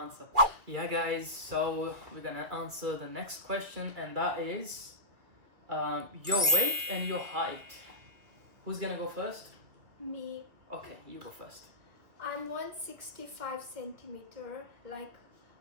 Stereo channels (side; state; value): left; late; 2.4 ms